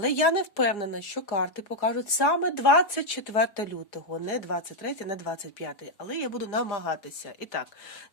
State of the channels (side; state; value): right; late; 4.8 ms